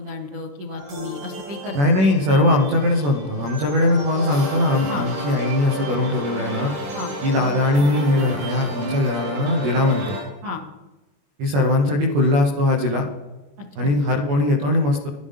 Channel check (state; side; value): late; left; 21 ms